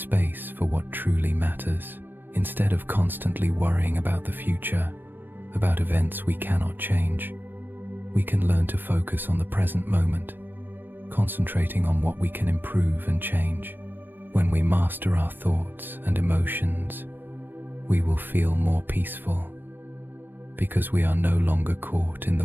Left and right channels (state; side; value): late; left; 0.094 ms